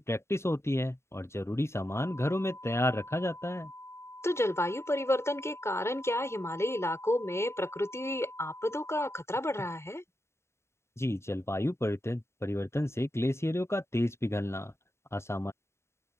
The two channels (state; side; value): late; right; 0.13 ms